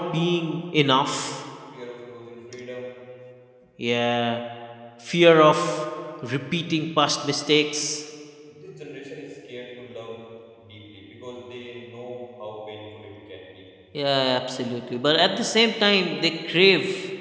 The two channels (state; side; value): identical; both; correlation 1.00